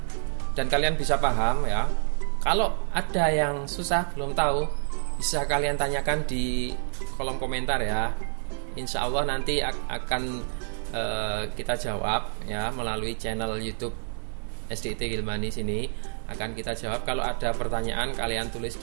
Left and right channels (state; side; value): silent; left; digital silence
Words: dan kalian bisa paham ya. Kalau ada yang susah belum tahu, bisa kalian tanyakan di kolom komentar ya. Insya Allah nanti akan kita jawab ya melalui channel YouTube SDIT Gilmani sini. Akan kita jawab. Kalau ada pertanyaan kalian tulis